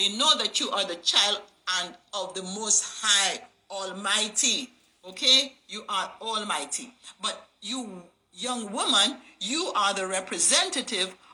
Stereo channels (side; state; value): both; identical; correlation 1.00